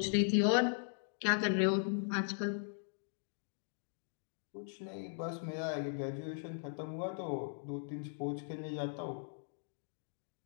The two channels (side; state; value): right; silent; digital silence